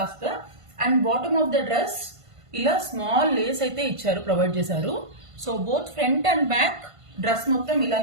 And bottom of the dress ఇలా స్మాల్ లేస్ అయితే ఇచ్చారు, ప్రొవైడ్ చేశారు. So both front and back dress మొత్తం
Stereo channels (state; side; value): late; left; 1.5 ms